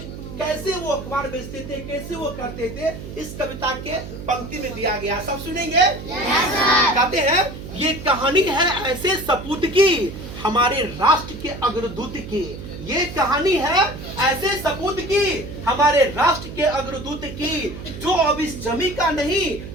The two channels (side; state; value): right; noise; hum, 11 dB below the sound